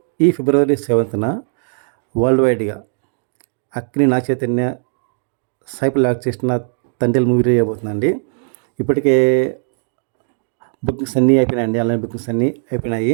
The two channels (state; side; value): silent; left; digital silence